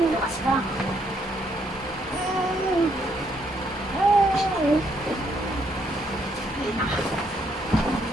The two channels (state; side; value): normal; both; correlation 0.72